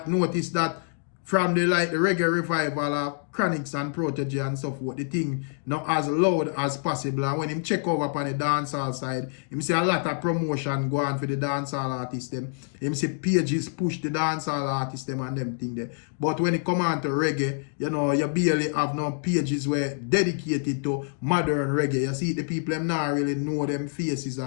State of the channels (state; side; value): silent; right; 61 dB below the other